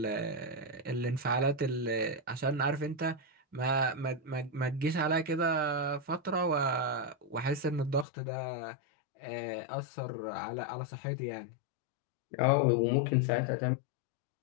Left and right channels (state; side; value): drops out; right; at 8.1 s